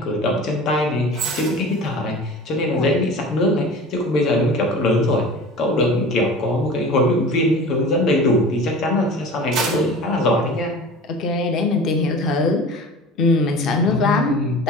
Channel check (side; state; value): both; normal; correlation 0.38